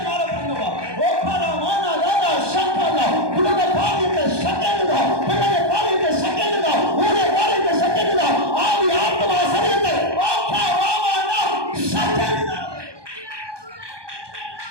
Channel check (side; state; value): left; late; 1.2 ms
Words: மேல பண்ணுவா. ஓப்பரமான ராதா சம்பனா உலக பாதித்த செகண்ட் தான், பிள்ளைய பாதித்த செகண்ட் தான், ஊரே பாதித்த செகண்ட் தான், ஆவி ஆத்மா சரீரத்தை ஓகே வாவானா செகண்ட் தான்.